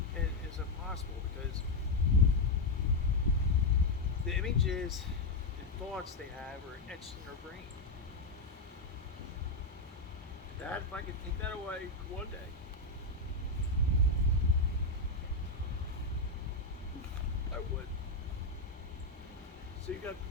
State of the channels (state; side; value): quieter; right; 3.0 dB